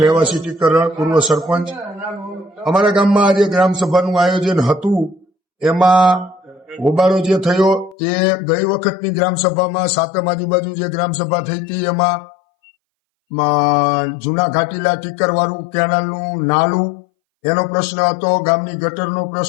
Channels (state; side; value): drops out; right; at 8.0 s